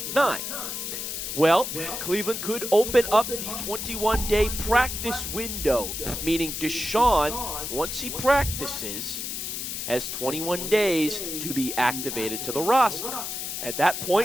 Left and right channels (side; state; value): left; noise; hiss, 5 dB below the sound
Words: 9, well, Cleveland could open up the 21-day practice window, meaning Deshaun, once he practices, has 21 days to be activated to the roster. At that